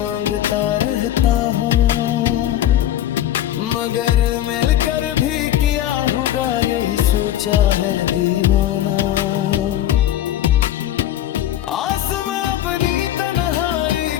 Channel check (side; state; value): right; quieter; 12.3 dB